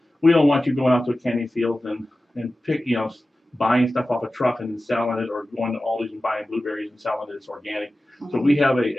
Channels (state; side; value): normal; both; correlation 0.95